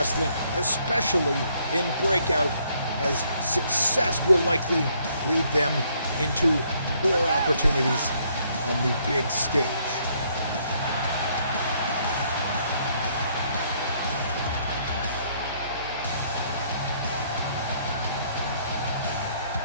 especially in Breakout, as success will likely lead them into more opportunities on the big stage.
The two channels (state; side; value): inverted; both; correlation -0.68